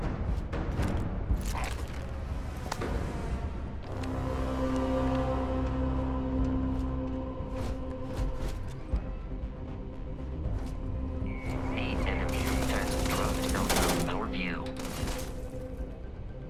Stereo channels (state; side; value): identical; both; correlation 1.00